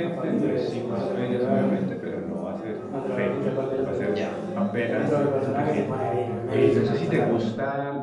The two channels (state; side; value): identical; both; correlation 1.00